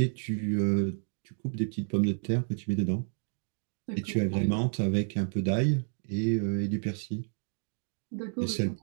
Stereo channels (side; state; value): left; silent; digital silence